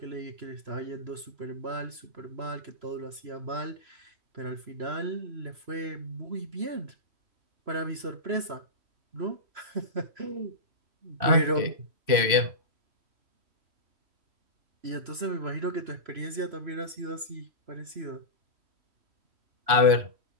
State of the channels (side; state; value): left; late; 3.1 ms